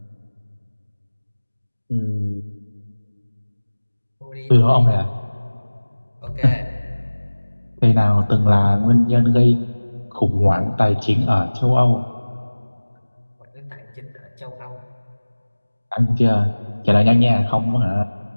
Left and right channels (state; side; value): inverted; both; correlation -1.00